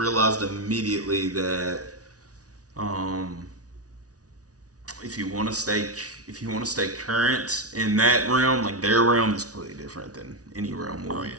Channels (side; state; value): left; late; 0.68 ms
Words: immediately that if you want to stay current in that realm, like their realm is completely different than any realm we'll